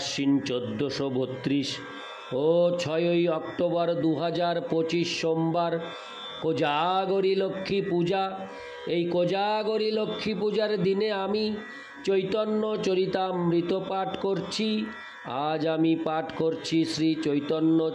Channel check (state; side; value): identical; both; correlation 1.00